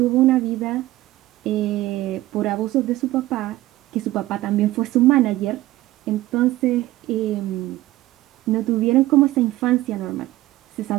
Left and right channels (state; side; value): quieter; left; 16.6 dB